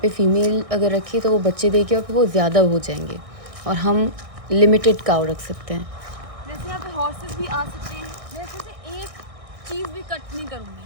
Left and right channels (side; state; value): left; late; 1.6 ms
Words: पे फ़ीमेल अगर रखी तो वो बच्चे देके और फिर वो ज़्यादा हो जाएंगे, और हम लिमिटेड काउ रख सकते हैं। वैसे यहाँ पे हॉर्सेस भी आ सकते हैं। मैं इसमें से एक चीज़ भी कट नहीं करूँगी,